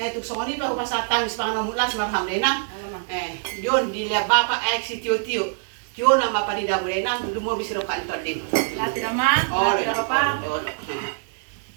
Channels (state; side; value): silent; left; 63 dB below the other